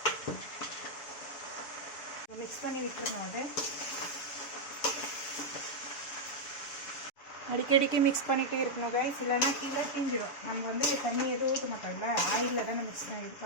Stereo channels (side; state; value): right; late; 7.1 ms